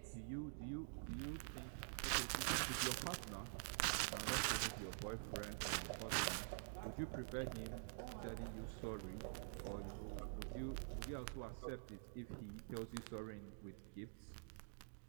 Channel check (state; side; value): silent; left; digital silence